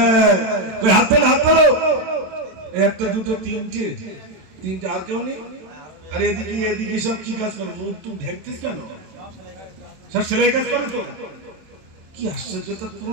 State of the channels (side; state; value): left; late; 27 ms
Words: হাত তোলো, হাত তোলো। একটা দুটো তিনটে তিনটে আর কেউ নেই? আর এদিকে এদিকে সব কি কাজ করে? মুখ টুক ঢেকতিস কেন? সব সেলাই কাজ করে তো। কি আশ্চর্য!